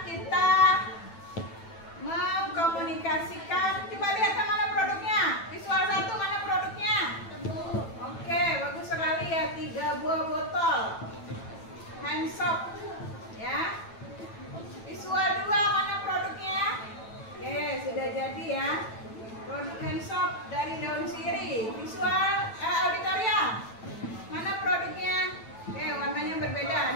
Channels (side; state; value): right; late; 9.1 ms